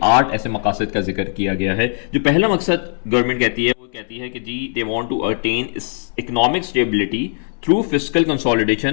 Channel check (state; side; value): silent; right; 67 dB below the other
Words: 8 ऐसे मकासद का जिक्र किया गया है। जो पहला मकसद गवर्नमेंट कहती है वो कहती है कि जी they want to attain economic stability through fiscal